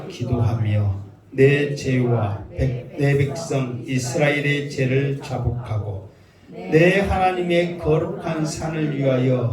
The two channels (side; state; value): both; identical; correlation 1.00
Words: 기도하며 내 죄와 내 백성 이스라엘의 죄를 자복하고 내 하나님의 거룩한 산을